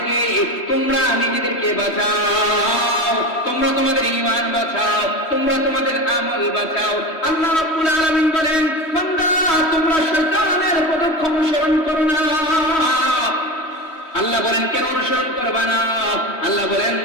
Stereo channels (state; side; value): late; right; 3.1 ms